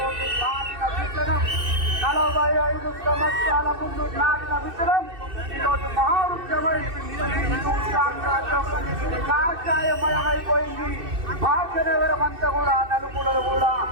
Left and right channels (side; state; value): left; late; 2.6 ms